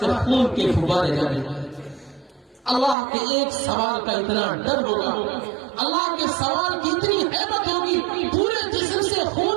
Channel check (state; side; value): drops out; left; at 3.0 s